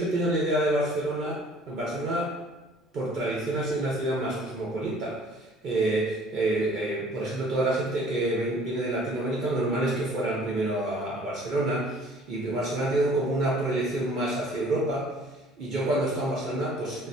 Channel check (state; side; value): normal; both; correlation 0.53